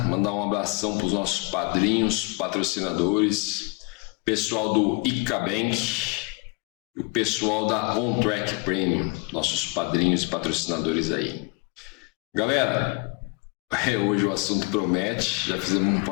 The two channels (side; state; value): right; quieter; 28.6 dB